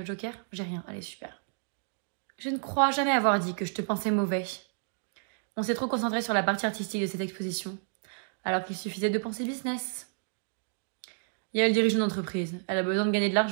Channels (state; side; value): silent; left; digital silence